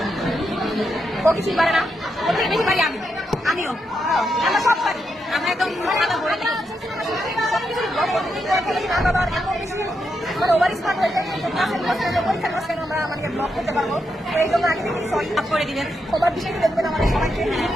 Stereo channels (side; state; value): both; normal; correlation 0.83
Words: ও কিছুই পারে না, ওর থেকে বেশি পারি আমিও, আমরা সব পারি। আমরা একদম খাতা ভরে দিই সবকিছু ব্লগ করতে না বাবার এমন বেশি মানে ওভার স্মার্ট হয়ে যায়, পরীক্ষার মাঝখানে আমরা আমাদের ব্লগ করতে পারবো। তো এই জন্য আগে থেকে সরি করে দিবেন, সবার বিষয়টি দেখবেন আমাদের সবাইকে।